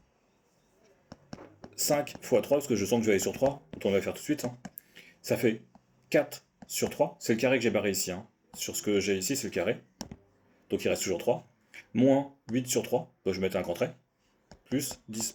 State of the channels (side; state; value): both; identical; correlation 1.00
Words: 5 fois 3, parce que je sens que je vais aller sur 3, donc on va le faire tout de suite. Hein. Ça fait 4 sur 3, c'est le carré que j'ai barré ici. Hein. Sur ce que j'ai ici, c'est le carré. Donc il reste toujours 3. Moins 8 sur 3, donc je vais mettre un grand trait. Plus 10,